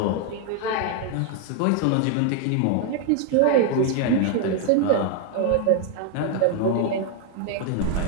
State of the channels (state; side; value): different; both; correlation 0.00